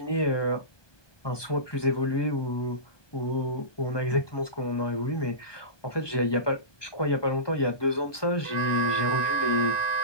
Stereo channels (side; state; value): right; late; 1.2 ms